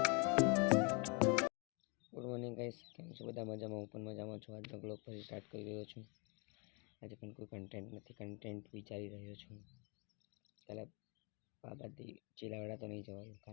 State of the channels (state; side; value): quieter; right; 33.6 dB